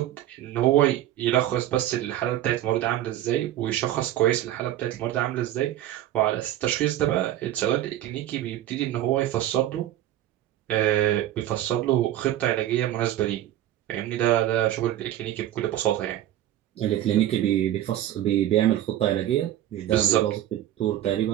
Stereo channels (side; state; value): left; quieter; 12.8 dB